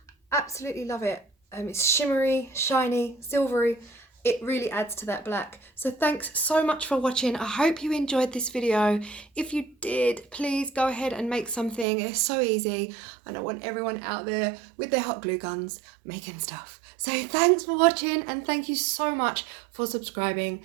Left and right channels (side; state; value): left; drops out; at 11.9 s